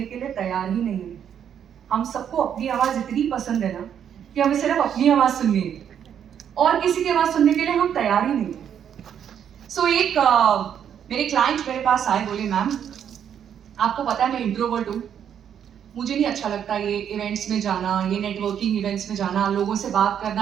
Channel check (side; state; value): left; quieter; 8.8 dB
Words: के लिए तैयार ही नहीं है। हम सबको अपनी आवाज़ इतनी पसंद है ना कि हमें सिर्फ अपनी आवाज़ सुननी है और किसी की आवाज़ सुनने के लिए हम तैयार ही नहीं है। सो एक मेरे क्लाइंट मेरे पास आए, बोले मैम आपको पता है मैं इंट्रोवर्ट हूँ, मुझे नहीं अच्छा लगता ये इवेंट्स में जाना, ये नेटवर्किंग इवेंट्स में जाना, लोगों से बात